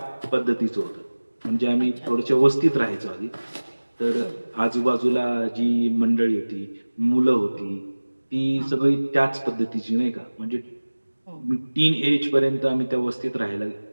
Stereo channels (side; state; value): both; inverted; correlation -1.00